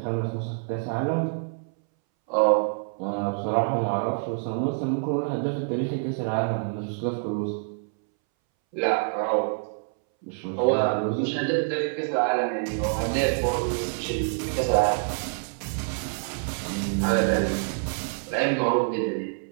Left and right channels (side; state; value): left; silent; 61 dB below the other